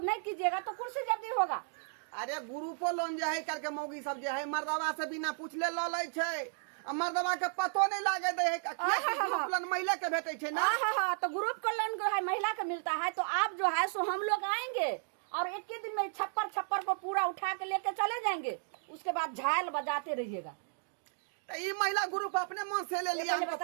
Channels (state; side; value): silent; left; digital silence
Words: नहीं कीजिएगा तो कुर्सी जब्दी होगा। अरे ग्रुपो लोन जो है करके मौगी सब जो है मर्दवा से बिना पूछले लो ले छै, आ मर्दवा के पतो नहीं लागे दे है ग्रुप लोन महिला के भेटे छै ना। हाँ, तो ग्रुप का लोन जो है महिला का मिलता है, तो आप जो है सो हम लोग आएंगे और एक ही दिन में छप्पर को पूरा उठा के लेके चले जाएंगे, उसके बाद झाल बजाते रहिएगा। तो ये महिला ग्रुप अपने मन से ले लिया, हमको